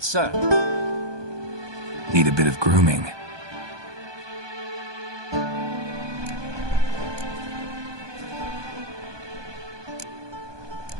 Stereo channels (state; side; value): late; left; 1.2 ms